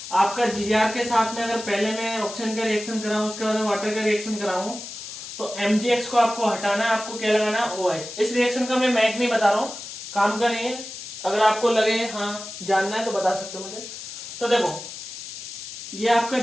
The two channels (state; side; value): noise; left; hiss, 11 dB below the sound